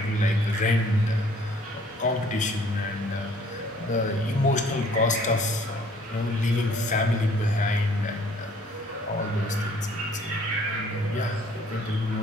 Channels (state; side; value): normal; both; correlation 0.58